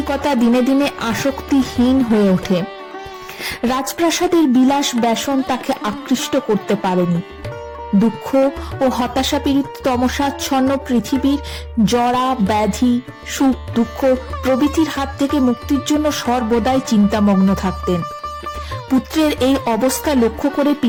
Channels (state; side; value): identical; both; correlation 1.00